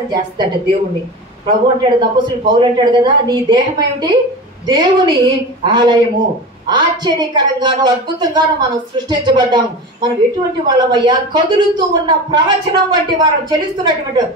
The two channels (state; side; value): normal; both; correlation 0.29